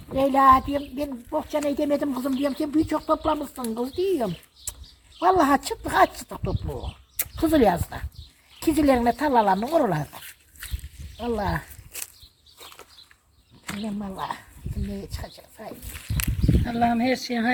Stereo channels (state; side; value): identical; both; correlation 1.00